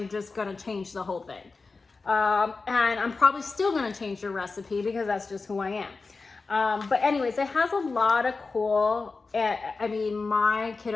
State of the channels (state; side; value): quieter; right; 4.1 dB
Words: just gonna change the whole thing. And I'm probably still going to change your recipe because that's just who I am. But anyways, it has a lot of cool, I mean, my